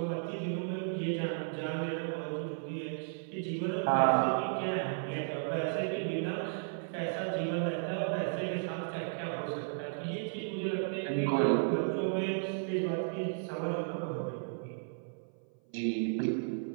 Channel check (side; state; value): left; silent; 55 dB below the other